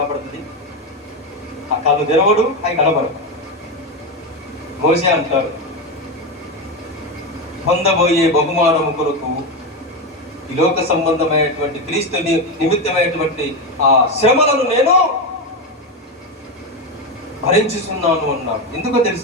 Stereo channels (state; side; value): normal; both; correlation 0.13